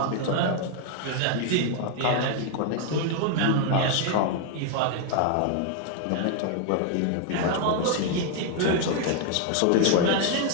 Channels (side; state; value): both; different; correlation 0.00